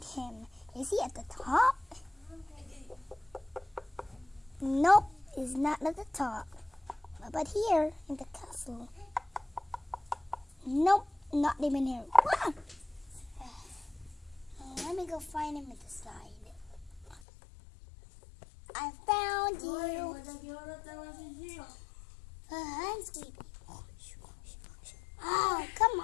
him. Is he at the top? Nope, he's not at the top. But here, in the castle. Nope, not even here. Ah! Let me go find him at the side. I found you. I'm sleepy. Oh, come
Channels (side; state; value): right; drops out; at 17.2 s